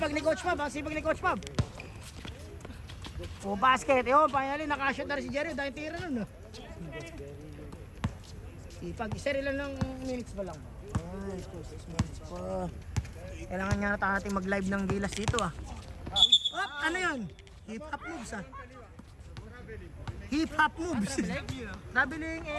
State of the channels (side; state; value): both; identical; correlation 1.00